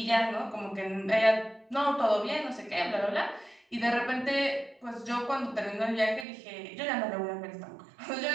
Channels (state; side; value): drops out; left; at 6.2 s